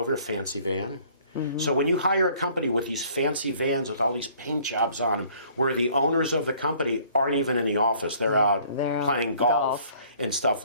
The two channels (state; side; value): inverted; both; correlation -0.57